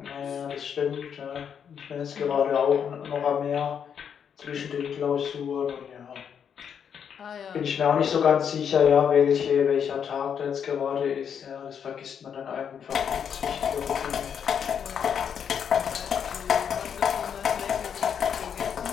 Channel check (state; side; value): quieter; right; 7.7 dB